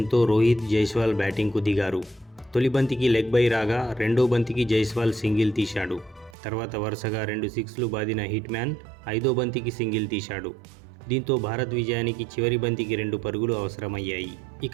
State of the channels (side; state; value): left; drops out; at 6.4 s